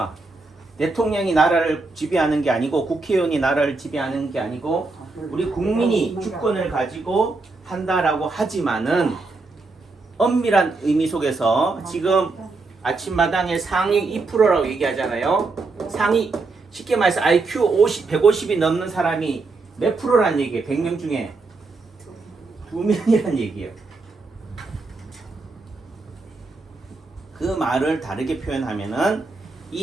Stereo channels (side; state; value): left; quieter; 3.7 dB